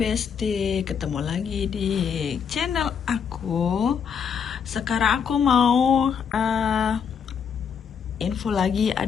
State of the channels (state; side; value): quieter; right; 7.0 dB